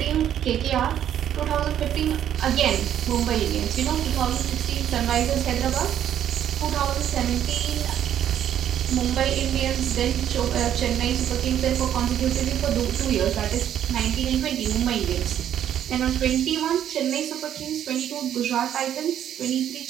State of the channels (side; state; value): left; quieter; 10.4 dB